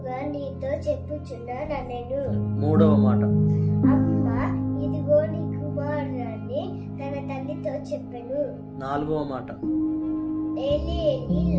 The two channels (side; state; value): both; identical; correlation 1.00